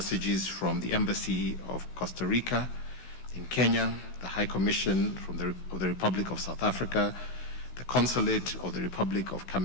from the Embassy of Costa Rica in Kenya, the High Commission of the Republic of South Africa, the Consulate of the Republic of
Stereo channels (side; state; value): right; late; 16 ms